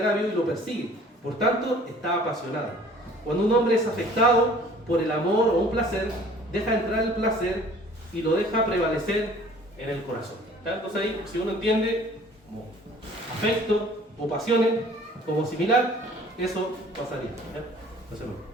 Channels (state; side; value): normal; both; correlation 0.51